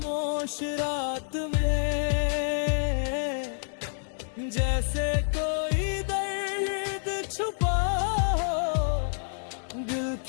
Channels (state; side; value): silent; right; digital silence